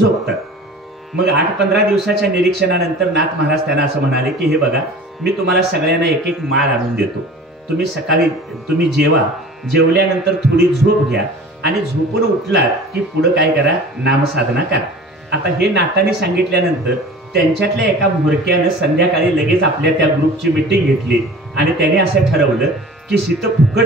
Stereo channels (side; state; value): both; normal; correlation 0.41